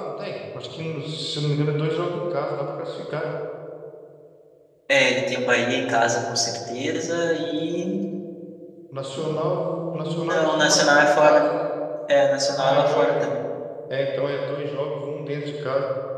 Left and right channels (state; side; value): identical; both; correlation 1.00